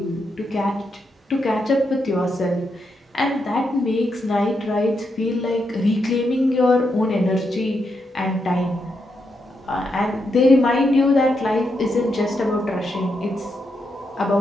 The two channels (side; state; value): both; normal; correlation 0.82